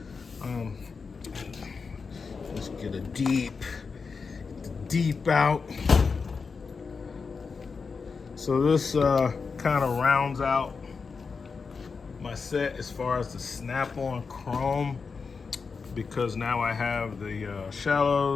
let's get a deep out. So this kind of rounds out my set as far as the Snap-on chrome, because now I have the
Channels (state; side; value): quieter; right; 5.0 dB